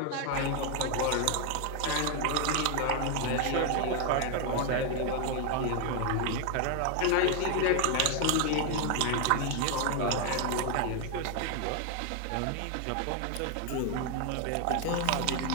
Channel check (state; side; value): different; both; correlation 0.01